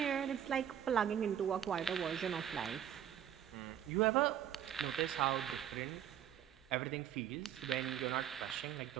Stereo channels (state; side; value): quieter; left; 10.1 dB